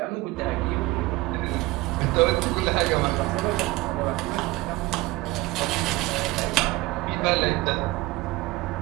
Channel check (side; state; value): left; quieter; 19.9 dB